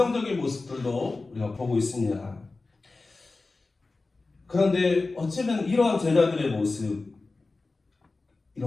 모습들도 우리가 보고 있습니다. 그런데 어쩌면 이러한 제자들의 모습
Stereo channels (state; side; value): quieter; right; 3.6 dB